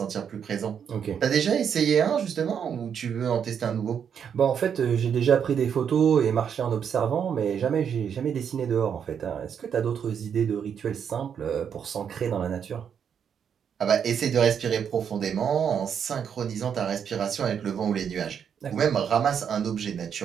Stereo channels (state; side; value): quieter; left; 7.7 dB